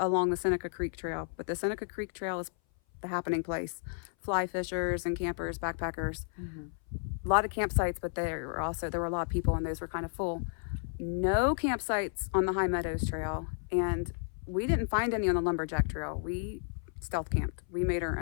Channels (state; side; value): silent; right; 56 dB below the other